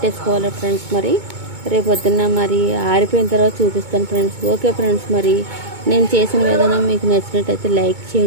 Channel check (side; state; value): left; late; 2.2 ms